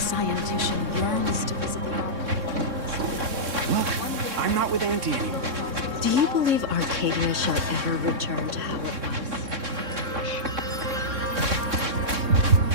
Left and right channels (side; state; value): left; late; 3.6 ms